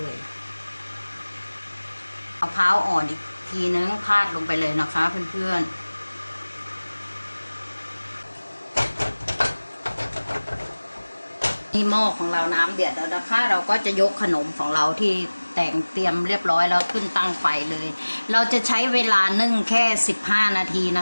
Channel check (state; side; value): inverted; both; correlation -1.00